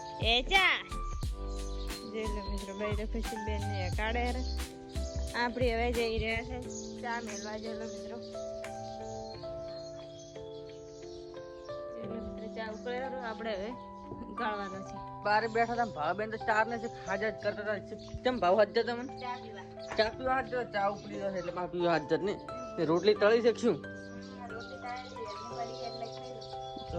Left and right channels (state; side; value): identical; both; correlation 1.00